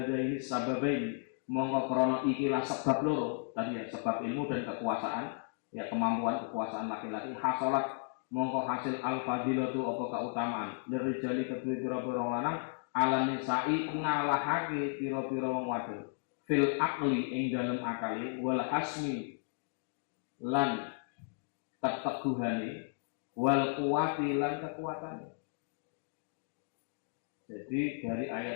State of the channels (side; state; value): right; silent; digital silence